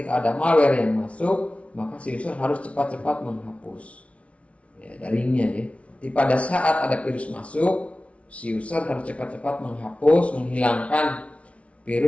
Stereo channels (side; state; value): right; late; 0.063 ms